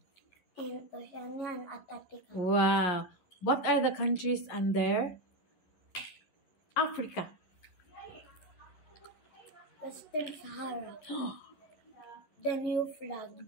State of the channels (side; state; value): right; late; 11 ms